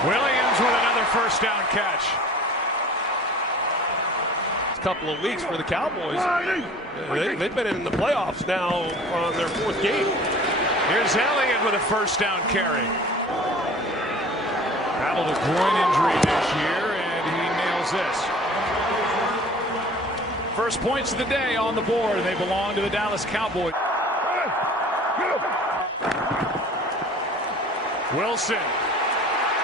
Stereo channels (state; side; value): normal; both; correlation 0.45